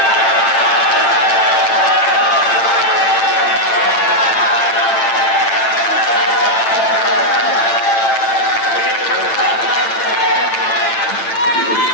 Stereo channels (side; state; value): right; late; 8.9 ms